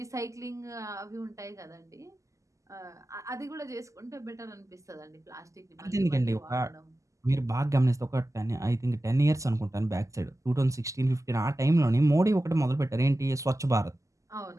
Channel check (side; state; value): left; late; 0.16 ms